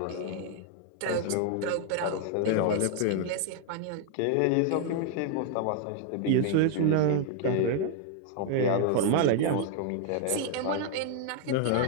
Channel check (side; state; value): both; different; correlation 0.00